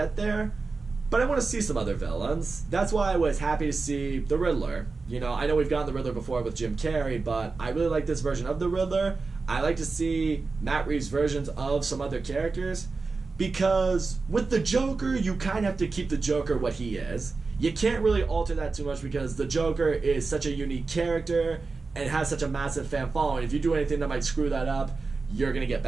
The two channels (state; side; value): quieter; left; 4.1 dB